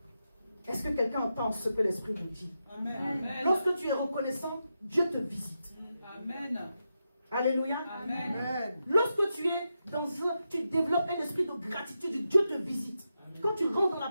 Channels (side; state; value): both; inverted; correlation -0.87